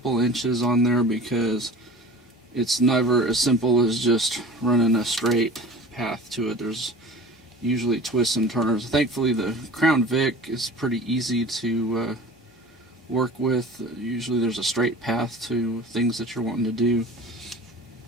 inches on there, because it's never as simple as just running a straight path to it. There's usually twists and turns. Thankfully the Crown Vic is pretty easy to work with. Usually there's a straight path to things that you're wanting to do.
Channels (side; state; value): both; normal; correlation 0.40